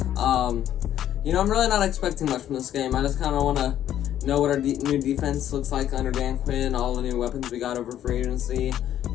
I'm really not expecting much from this game. I just kind of want to know what our new defense looks like under Dan Quinn, all the new weapons we got over free agency,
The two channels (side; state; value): right; quieter; 11.2 dB